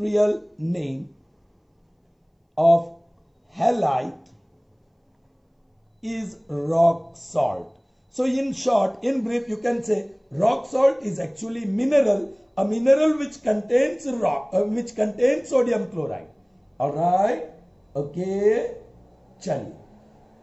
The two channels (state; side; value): identical; both; correlation 1.00